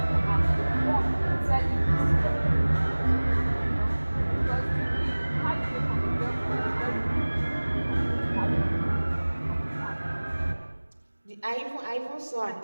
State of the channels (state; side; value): inverted; both; correlation -1.00